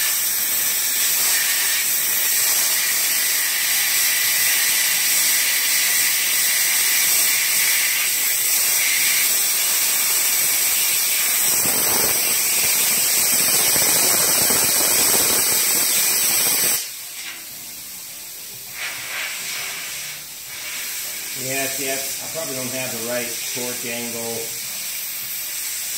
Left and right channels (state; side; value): identical; both; correlation 1.00